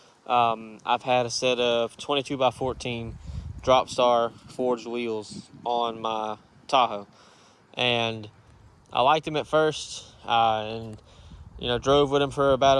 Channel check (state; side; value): identical; both; correlation 1.00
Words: I've had a set of 22 by 14 drop star forged wheels on my Tahoe, and I liked them at first, and drove with them for about